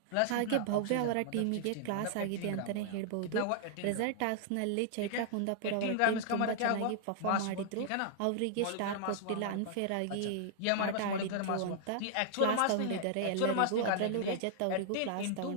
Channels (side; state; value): both; different; correlation -0.01